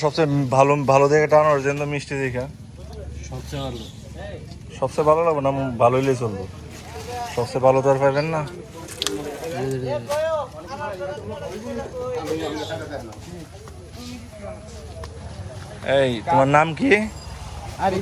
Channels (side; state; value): both; identical; correlation 1.00